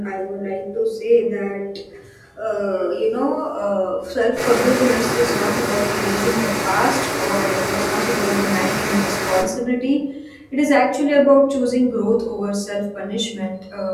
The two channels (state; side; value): identical; both; correlation 1.00